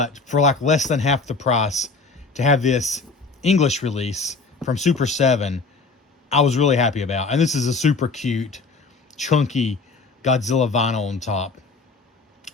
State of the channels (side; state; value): right; quieter; 4.1 dB